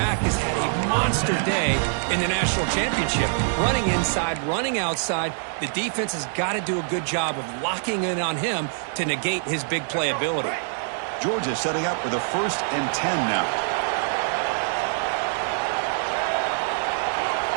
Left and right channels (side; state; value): left; silent; digital silence